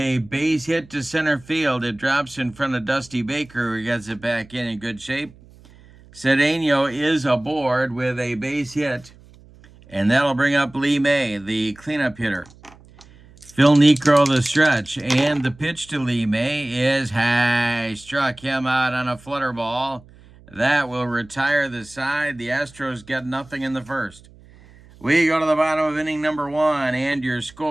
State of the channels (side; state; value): right; noise; hum, 24 dB below the sound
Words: base hit to center field. It drops in front of Dusty Baker, who gets it back in good shape. Cedeno is aboard with a base hit. And that'll bring up Lee May, the cleanup hitter. Phil Niekro, the stretch. And the pitch to Lee May is high. Struck him out on a flutter ball. That will retire the side. The Astros get nothing in the first. We go to the bottom of inning number 1, and your